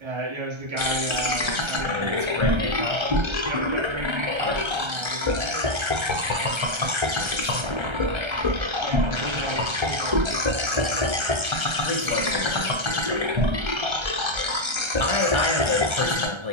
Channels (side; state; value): left; late; 1.3 ms